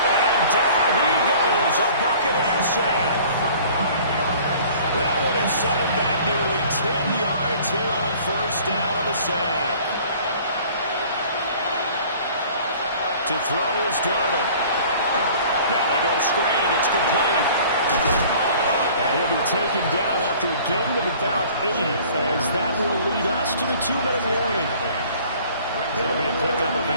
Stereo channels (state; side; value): inverted; both; correlation -0.50